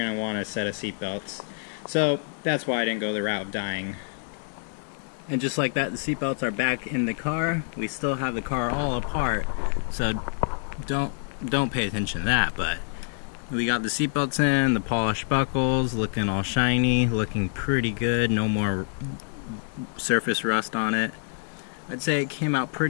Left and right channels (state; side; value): silent; right; digital silence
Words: to want a set of seat belts. So that's why I didn't go the route of dyeing. And just like that, the seat belts are back in the car. We still have the car all apart, so don't pay attention to that. But we got the seat belts in, the polished buckles looking all shiny, looking pretty good. No more surface rust on it. I'd say it came out